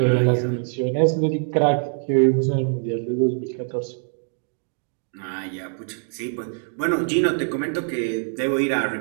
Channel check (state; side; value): silent; left; 63 dB below the other